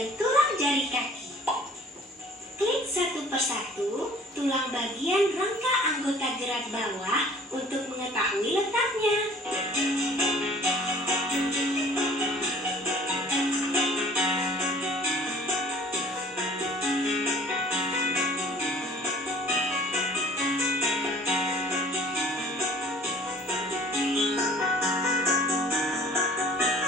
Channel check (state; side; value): normal; both; correlation 0.51